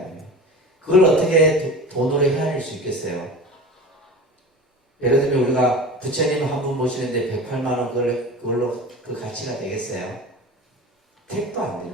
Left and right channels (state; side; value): normal; both; correlation 0.33